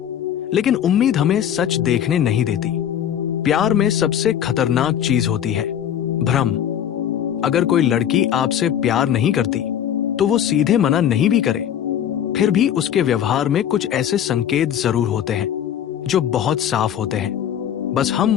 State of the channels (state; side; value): quieter; right; 9.8 dB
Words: लेकिन उम्मीद हमें सच देखने नहीं देती। प्यार में सबसे खतरनाक चीज होती है भ्रम। अगर कोई लड़की आपसे प्यार नहीं करती तो वो सीधे मना नहीं भी करे, फिर भी उसके व्यवहार में कुछ ऐसे संकेत जरूर होते हैं जो बहुत साफ होते हैं, बस